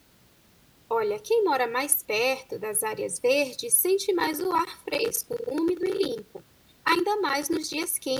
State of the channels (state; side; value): identical; both; correlation 1.00